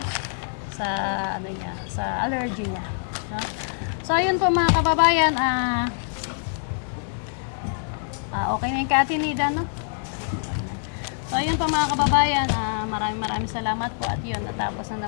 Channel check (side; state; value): right; silent; digital silence